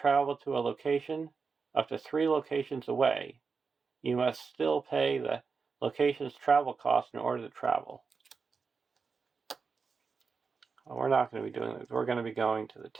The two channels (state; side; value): quieter; left; 5.1 dB